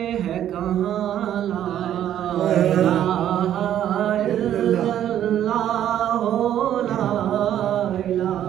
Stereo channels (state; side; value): quieter; left; 11.0 dB